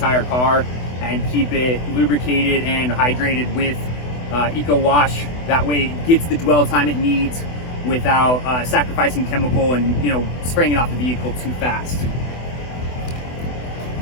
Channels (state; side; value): late; right; 24 ms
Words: car and keep it lubricated and hydrated with Eco Wash. That way it gets the dwell time it needs without sacrificing chemical and, you know, spraying it off the vehicle too fast.